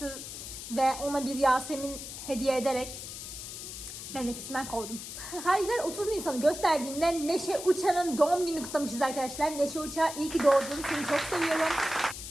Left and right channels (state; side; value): noise; left; hiss, 9 dB below the sound